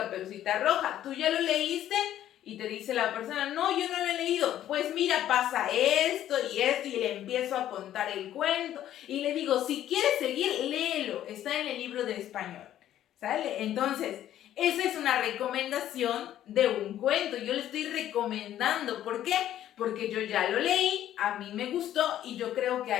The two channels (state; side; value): quieter; right; 11.9 dB